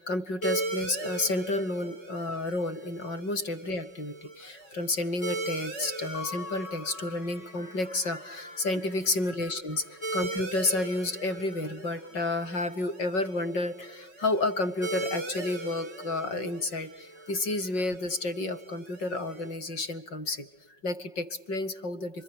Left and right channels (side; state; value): right; late; 5.4 ms